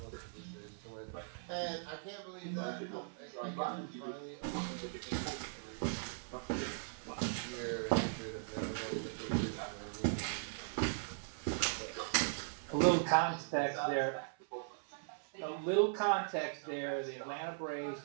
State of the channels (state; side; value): silent; left; 52 dB below the other